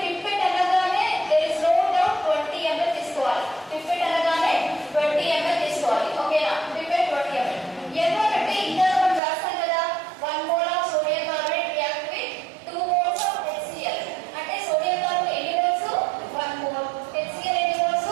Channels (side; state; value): left; drops out; at 9.2 s